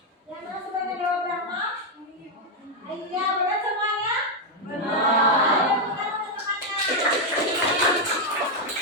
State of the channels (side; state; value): both; normal; correlation 0.01